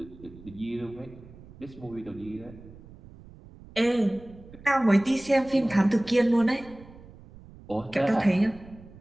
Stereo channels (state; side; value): noise; right; rumble, 20 dB below the sound